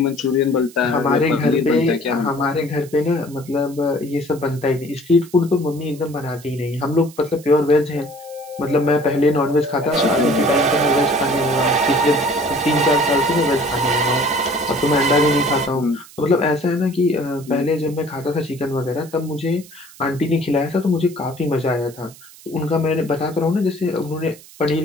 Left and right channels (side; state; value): right; noise; hiss, 21 dB below the sound